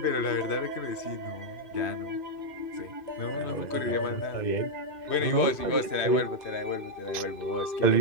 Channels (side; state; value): right; late; 2.5 ms